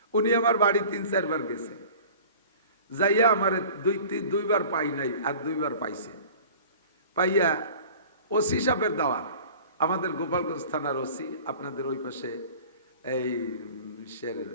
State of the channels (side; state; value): both; inverted; correlation -0.43